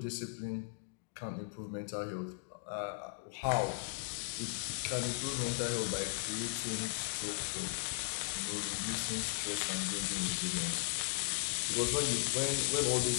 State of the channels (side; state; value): right; silent; digital silence